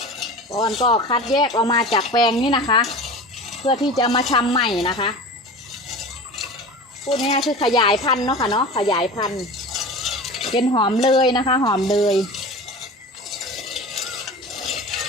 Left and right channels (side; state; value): both; normal; correlation 0.34